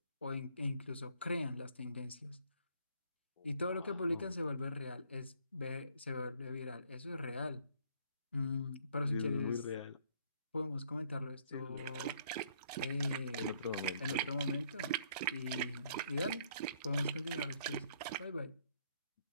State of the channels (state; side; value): inverted; both; correlation -0.65